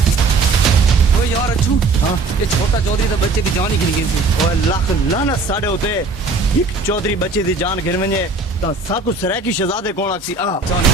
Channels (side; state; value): left; quieter; 3.7 dB